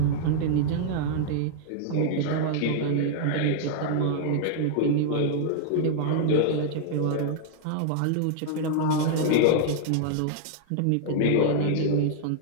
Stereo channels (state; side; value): different; both; correlation -0.01